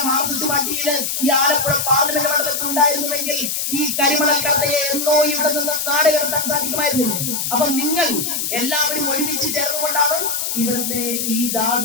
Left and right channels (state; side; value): noise; left; hiss, 1 dB below the sound